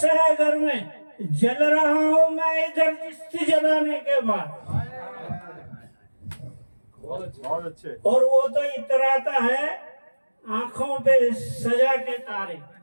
है घर में, जल रहा हूं मैं इधर चिश्ती जलाने के बाद। बहुत अच्छे। और वो तो इतराता है आंखों पे सजा के तारे।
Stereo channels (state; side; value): inverted; both; correlation -1.00